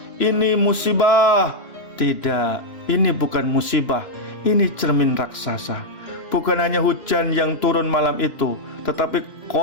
ini musibah. Tidak, ini bukan musibah, ini cermin raksasa. Bukan hanya hujan yang turun malam itu, tetapi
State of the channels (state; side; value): late; right; 2.9 ms